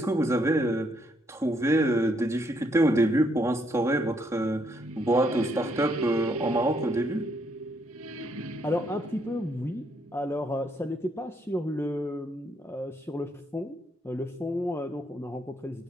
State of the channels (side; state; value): both; normal; correlation 0.73